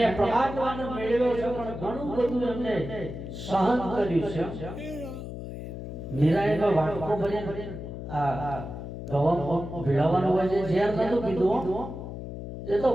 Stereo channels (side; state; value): left; noise; hum, 8 dB below the sound